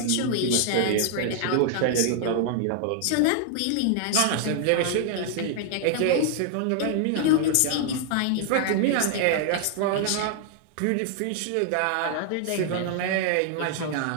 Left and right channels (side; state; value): both; different; correlation 0.00